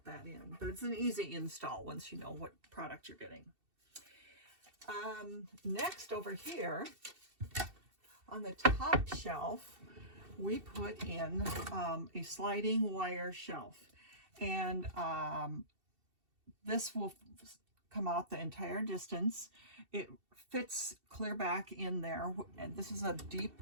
that in. But it's an easy install once you know what product you're getting. Next over here, on the top shelf, we put in a sliding wire shelf. And this will come out the entire distance. It fits clear back in there. And this is a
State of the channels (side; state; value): left; late; 2.7 ms